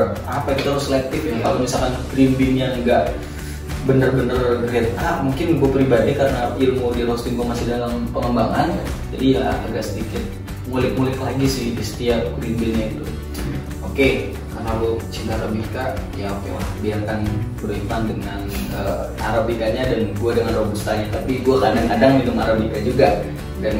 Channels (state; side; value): identical; both; correlation 1.00